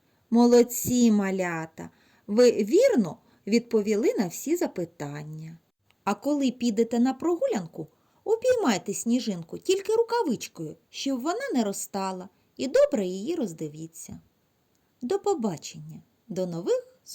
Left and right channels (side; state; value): both; identical; correlation 1.00